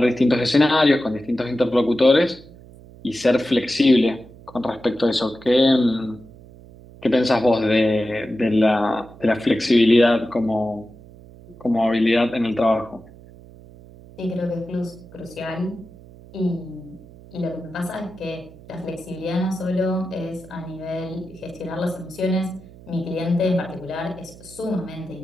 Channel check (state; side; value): noise; right; hum, 21 dB below the sound